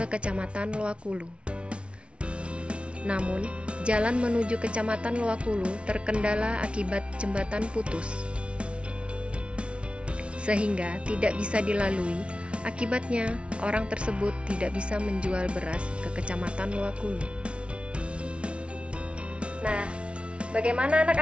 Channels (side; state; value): left; late; 0.060 ms